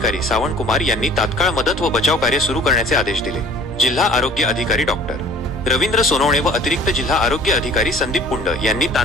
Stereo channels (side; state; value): both; normal; correlation 0.49